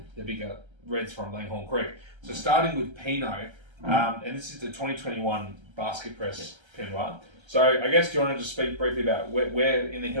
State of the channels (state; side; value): late; left; 1.3 ms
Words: the bigger reds from Langhorne Creek. So starting with Pinot, and this is the 2021 basket press Pinot Noir. So I guess do you want to just speak briefly about where in the